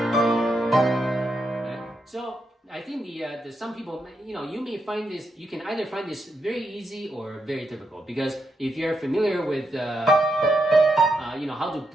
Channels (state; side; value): normal; both; correlation 0.82